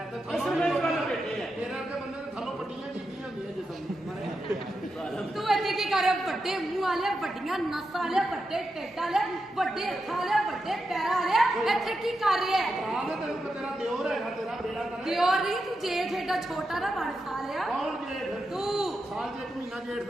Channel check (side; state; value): both; normal; correlation 0.87